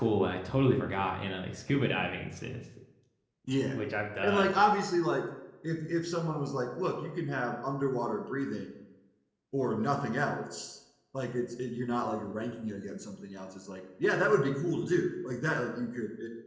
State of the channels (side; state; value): both; identical; correlation 1.00